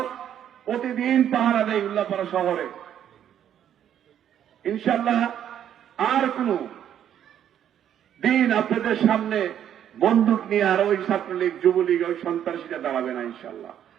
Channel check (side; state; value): left; quieter; 10.0 dB